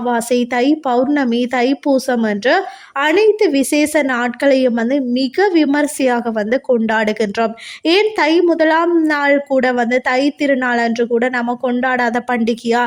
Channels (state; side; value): identical; both; correlation 1.00